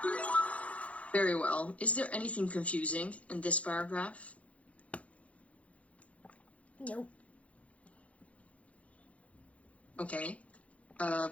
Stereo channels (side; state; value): right; late; 0.065 ms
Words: Very well. Is there anything confusing in this paragraph? Nope. Okay.